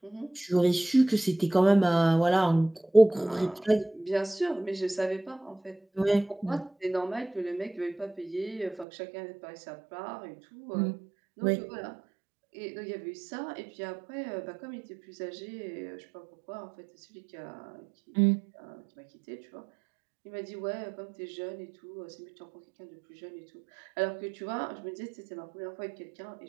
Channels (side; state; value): left; drops out; at 8.8 s